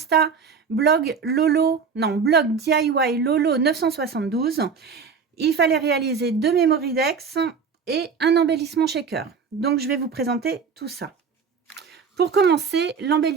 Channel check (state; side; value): quieter; left; 5.8 dB